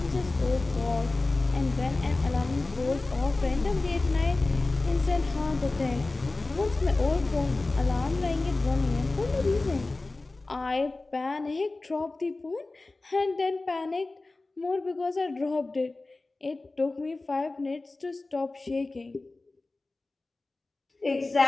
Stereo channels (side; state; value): right; quieter; 3.2 dB